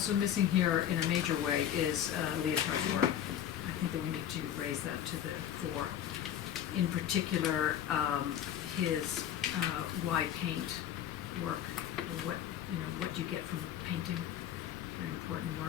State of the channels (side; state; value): right; quieter; 10.4 dB